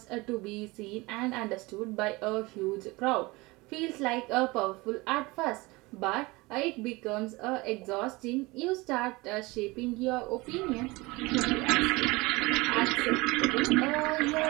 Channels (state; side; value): quieter; left; 23.1 dB